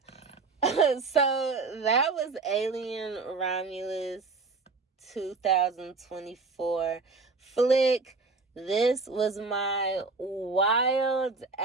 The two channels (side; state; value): left; quieter; 4.0 dB